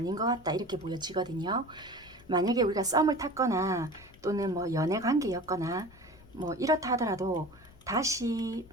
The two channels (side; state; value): left; noise; rumble, 23 dB below the sound